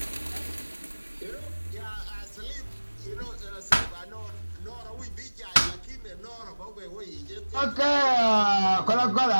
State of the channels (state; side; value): inverted; both; correlation -1.00